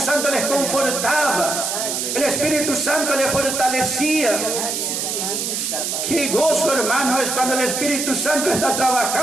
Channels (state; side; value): noise; right; hiss, 2 dB below the sound